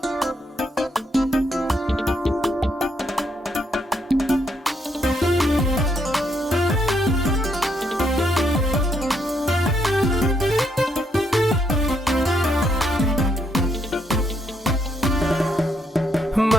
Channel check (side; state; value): both; normal; correlation 0.75